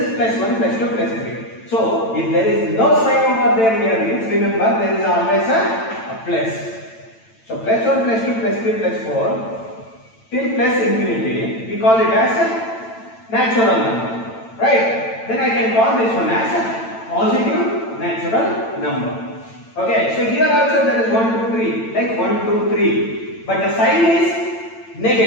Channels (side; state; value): right; late; 8.9 ms